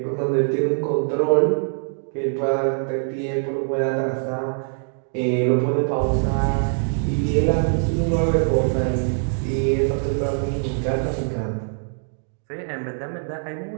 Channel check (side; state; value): left; silent; 63 dB below the other